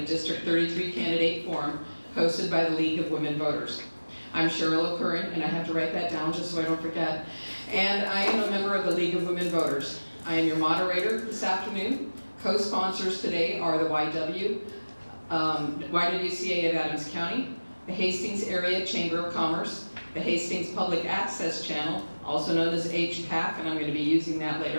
District 33 Candidate Forum hosted by the League of Women Voters. I'm Cheryl O'Curran, and I have to write that down just so I don't forget. And I am a member of the League of Women Voters. I am your moderator this afternoon. Co-sponsors today are the YWCA of Adams County, the Hastings Area Chamber of Commerce, the Hastings Public Access Channel, also known as HPAC, and I'm going to be using that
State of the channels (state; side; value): inverted; both; correlation -1.00